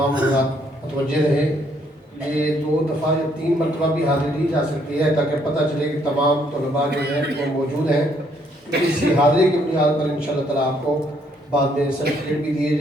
حضرات متوجہ رہے، یہ 2 دفعہ یا 3 مرتبہ بھی حاضری دی جا سکتی ہے تاکہ پتہ چلے کہ تمام طلباء جو ہیں وہ موجود ہیں۔ اسی حاضری کی بنیاد پر انشاءاللہ تعالیٰ آپ کو بعد میں سرٹیفکیٹ بھی دیا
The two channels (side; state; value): both; normal; correlation 0.68